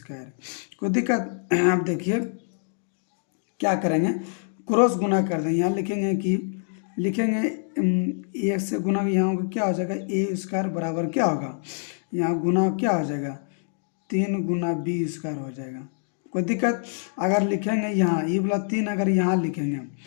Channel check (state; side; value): silent; right; digital silence